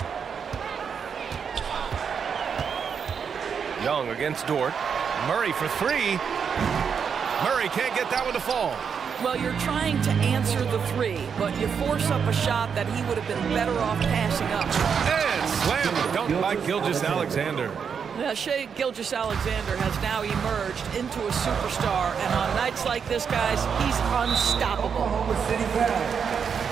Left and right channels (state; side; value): quieter; left; 6.7 dB